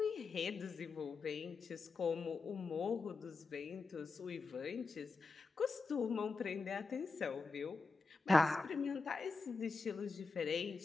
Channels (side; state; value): right; quieter; 4.2 dB